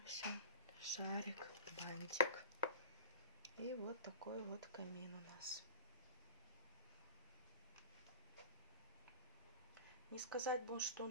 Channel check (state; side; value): inverted; both; correlation -0.34